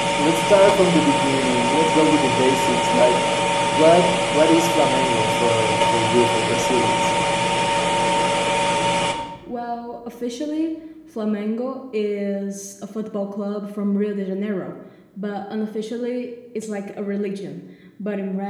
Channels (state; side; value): identical; both; correlation 1.00